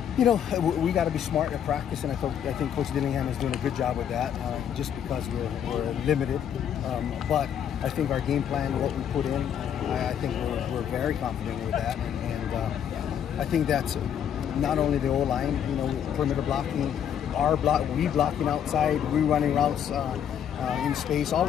You know, we got to be smart at practice, and I think Coach Dillingham is doing a good job with that, just because we're limited. But I think our game plan, what we put in, I think we're very confident with that, and I think that's not only the O-line, you know, perimeter blocking, we blocking outside, we running routes in space. All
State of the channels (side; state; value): right; quieter; 9.0 dB